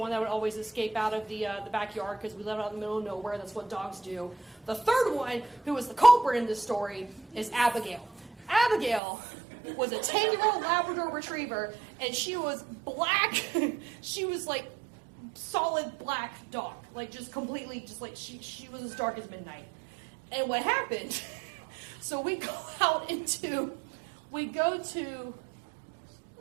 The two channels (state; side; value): drops out; left; at 9.0 s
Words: that would always escape out of the backyard because we live out in the middle of nowhere. That's what dogs do. The third one, who was the culprit in this story, is Abigail. Abigail was a 10-year-old Labrador Retriever, and she was black. She was like solid black dog, like just completely, just like she was as dark as midnight. And what happened? So we go to